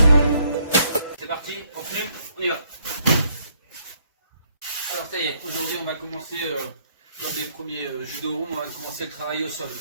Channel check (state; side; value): inverted; both; correlation -0.69